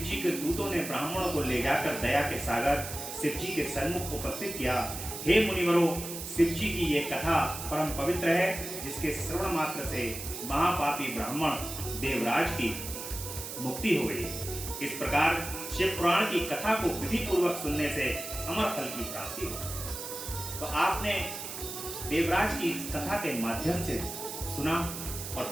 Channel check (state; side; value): noise; right; hiss, 8 dB below the sound